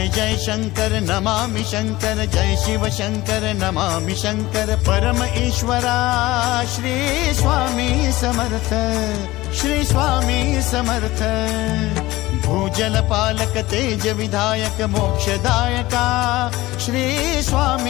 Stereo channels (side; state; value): right; quieter; 18.5 dB